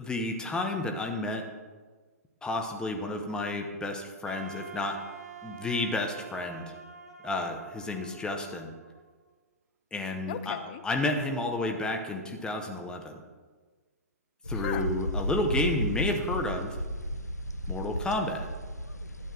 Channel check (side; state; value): both; normal; correlation 0.09